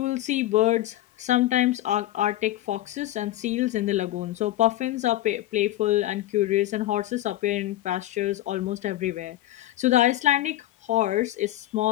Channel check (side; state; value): right; quieter; 15.1 dB